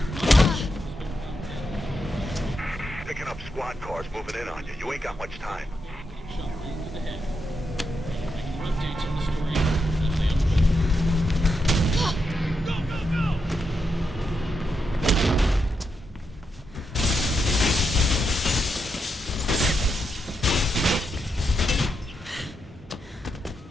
Robert Pope has been found dead. Picking up squad cars moving in on you. You ain't got much time. Shot right to the head. Regular updates on the story as they unfold. Go, go, go!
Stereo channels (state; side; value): normal; both; correlation 0.83